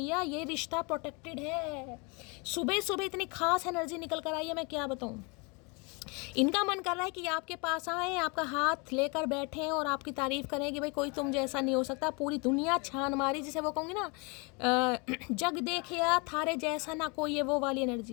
ये रिश्ता प्रोटेक्टेड है। सुबह सुबह इतनी खास एनर्जी निकल कर आई है, मैं क्या बताऊँ। इनका मन कर रहा है कि आपके पास आए, आपका हाथ लेकर बैठें और आपकी तारीफ करें कि भाई कोई तुम जैसा नहीं हो सकता। पूरी दुनिया छान मारी, जिसे वो कहूँगी ना, जग देखिया थारे जैसा ना कोई, ये वो वाली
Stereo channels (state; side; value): quieter; right; 30.9 dB